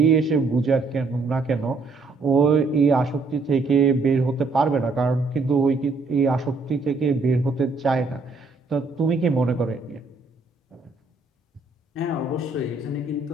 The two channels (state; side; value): quieter; left; 3.8 dB